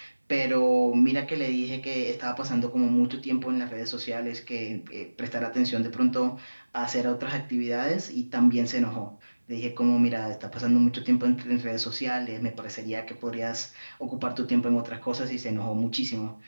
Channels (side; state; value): both; inverted; correlation -1.00